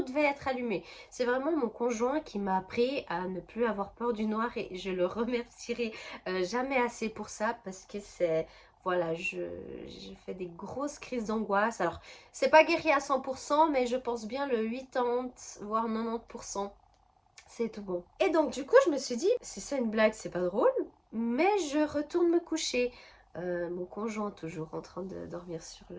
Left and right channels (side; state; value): both; identical; correlation 1.00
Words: devait être allumé. C'est vraiment mon conjoint qui m'a appris à ne plus avoir peur du noir et je le remercierai jamais assez pour ça parce que c'est... Voilà, je fais des grosses crises d'angoisse. Alors, c'est pas guéri à 100%, mais je pense bien le 80, voire 90%. C'est tout bon. Et donc, du coup, je me suis dit, si c'est une blague, c'est pas drôle, mais je retourne me coucher. Mon conjoint toujours en train de dormir